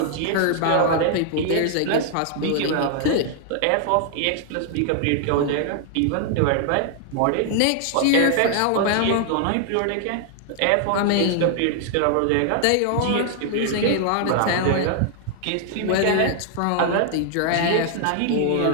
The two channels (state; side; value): different; both; correlation 0.00